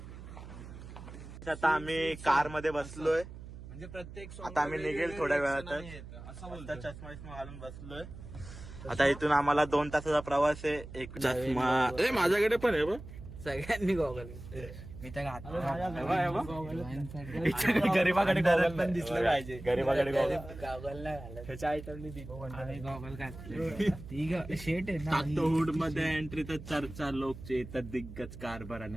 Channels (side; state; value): right; noise; hum, 13 dB below the sound